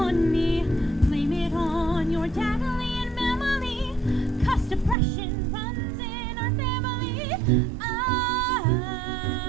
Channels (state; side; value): drops out; left; at 5.0 s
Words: me, blame it on your daddy and memory, 'cause depression runs in our family. I